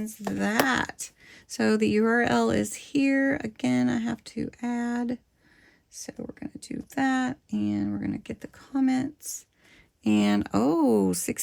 that. So the URL is here. Again, I have to add. So we're going to do that, and we're going to get the comments. And oh,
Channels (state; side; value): identical; both; correlation 1.00